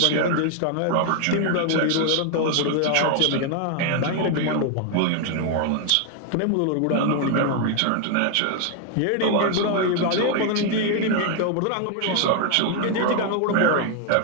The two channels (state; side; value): different; both; correlation 0.00